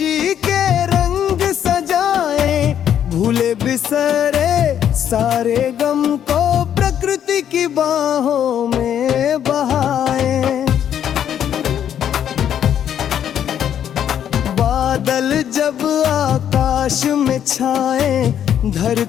के रंग सजाए। भूले बिसरे सारे गम को प्रकृति की बाहों में बहाए। बादल जब आकाश में छाए,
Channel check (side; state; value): right; quieter; 9.6 dB